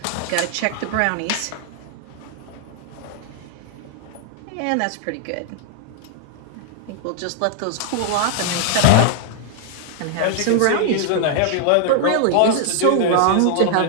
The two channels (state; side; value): different; both; correlation 0.00